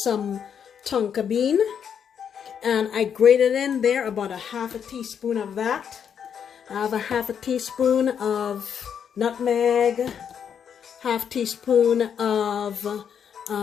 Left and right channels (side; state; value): right; quieter; 7.8 dB